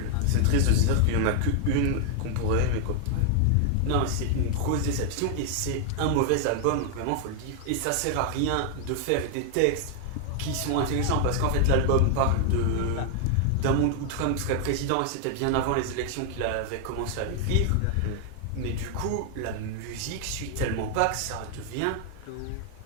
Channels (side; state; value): both; different; correlation 0.00